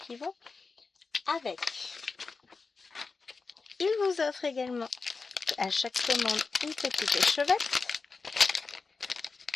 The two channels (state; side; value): quieter; right; 4.4 dB